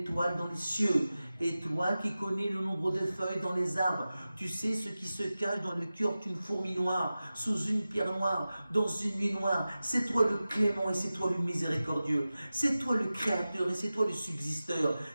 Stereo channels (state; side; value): inverted; both; correlation -0.95